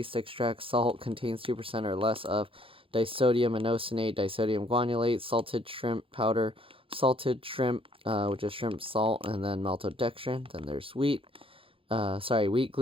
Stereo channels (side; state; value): left; late; 0.26 ms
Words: extract salt, contains 2% or less of disodium inosinate, disodium guanylate, salted shrimp powder, salted shrimp, which is shrimp salt, and then maltodextrin. Then there's wheat